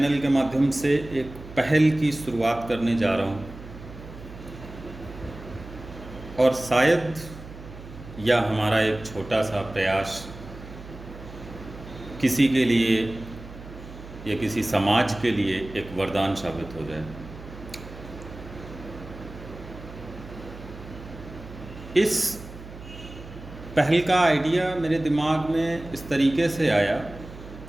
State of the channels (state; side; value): noise; right; hum, 15 dB below the sound